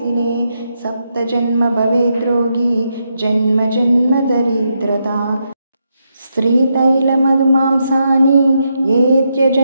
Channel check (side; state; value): both; inverted; correlation -0.82